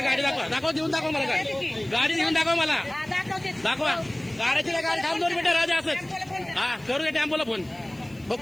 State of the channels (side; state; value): left; noise; hiss, 27 dB below the sound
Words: गाडी दाखवा देऊन दाखवा मला गाडी गाडी घेऊन दाखवा मला हा, दाखवते. दाखवा गाड्याची गाडी थांब 2 मिनिटं राजा असंच हा करू दे टेम्पोला फोन